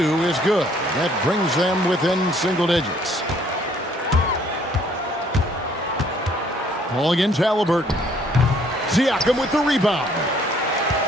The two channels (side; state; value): both; normal; correlation 0.62